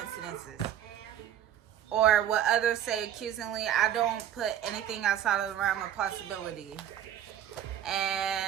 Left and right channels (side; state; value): left; quieter; 10.5 dB